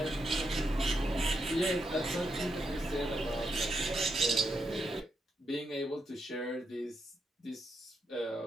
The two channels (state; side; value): normal; both; correlation 0.82